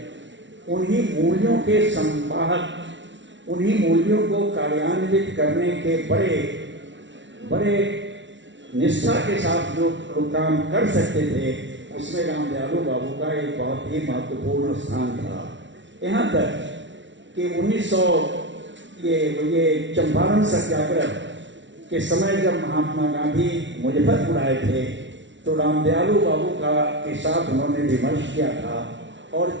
उन्हीं मूल्यों के संवाहक, उन्हीं मूल्यों को कार्यान्वित करने के बड़े निष्ठा के साथ जो लोग काम कर सकते थे, उसमें राम दयालु बाबू का एक बहुत ही महत्वपूर्ण स्थान था। यहाँ तक कि 1900 ये चंपारण सत्याग्रह के समय जब महात्मा गांधी मुजफ्फरपुर आए थे, तो राम दयालु बाबू के साथ उन्होंने विमर्श किया था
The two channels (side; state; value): left; late; 0.54 ms